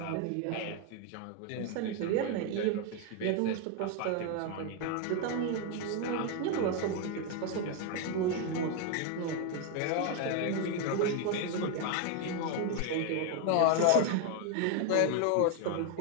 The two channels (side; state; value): both; different; correlation 0.01